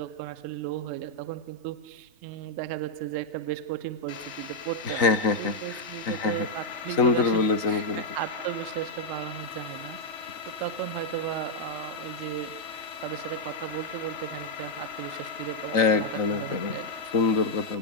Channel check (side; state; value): right; late; 3.3 ms